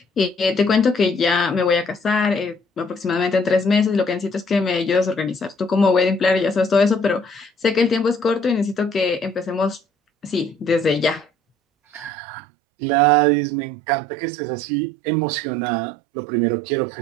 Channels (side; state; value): left; drops out; at 12.1 s